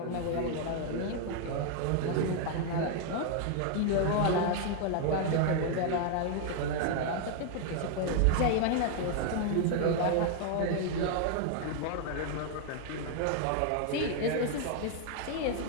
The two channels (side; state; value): both; different; correlation 0.00